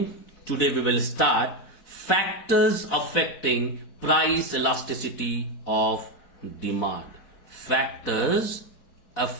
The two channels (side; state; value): right; late; 4.1 ms